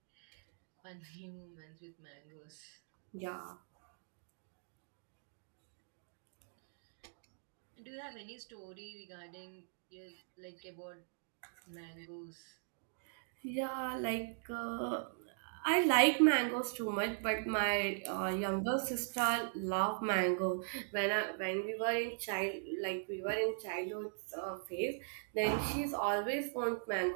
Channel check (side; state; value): left; silent; digital silence